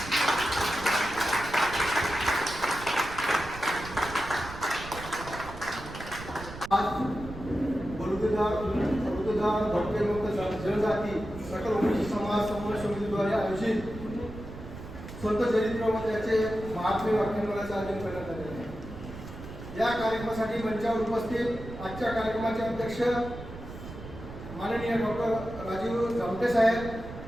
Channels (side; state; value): right; noise; rumble, 12 dB below the sound